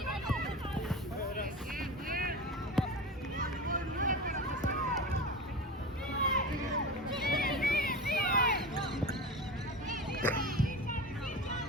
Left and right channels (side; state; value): both; normal; correlation 0.28